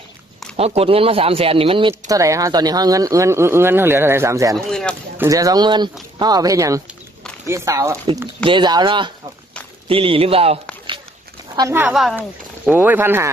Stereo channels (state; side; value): normal; both; correlation 0.64